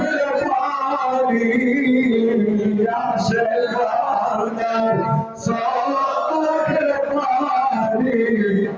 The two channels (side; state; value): both; identical; correlation 1.00